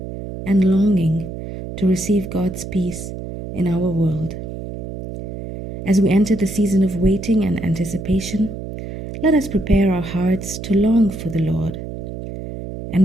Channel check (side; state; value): right; noise; hum, 9 dB below the sound